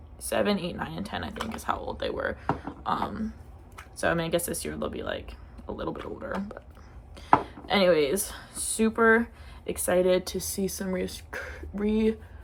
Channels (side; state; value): both; identical; correlation 1.00